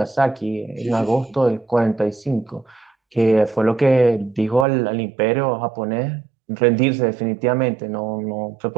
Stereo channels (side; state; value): left; drops out; at 4.7 s